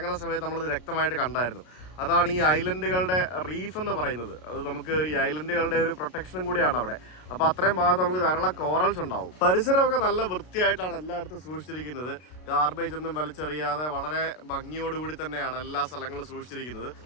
സമയത്ത് നമ്മളത് വ്യക്തമായിട്ട് കണ്ടായിരുന്നു. അതാണ് ഈ ഐലൻഡുകളുടെ റീഫ് എന്ന് പറയുന്നത്. അത് നമുക്ക് ഈ ഐലൻഡുകളുടെ ഒരു പ്രൊട്ടക്ഷനും കൂടിയാണ് അവിടെ. അപ്പോൾ അത്രയും ഭാഗത്ത് നമുക്ക് ധാരാളം കോറൽസ് ഉണ്ടാവും. പരിസരമൊക്കെ നല്ല വൃത്തിയായിട്ടാണ് എല്ലായിടത്തും സൂക്ഷിച്ചിരിക്കുന്നത്. ഗാർബേജ് ഒന്നും വലിച്ചെറിയാതെ വളരെ ഭംഗിയോടുകൂടി തന്നെയാണ് എല്ലാ സ്ഥലങ്ങളും സൂക്ഷിച്ചിരിക്കുന്നത്.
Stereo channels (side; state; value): right; late; 33 ms